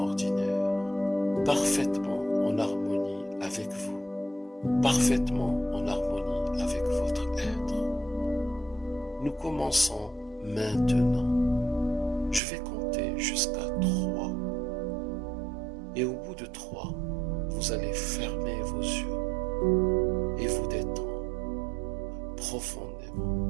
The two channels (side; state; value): left; drops out; at 12.4 s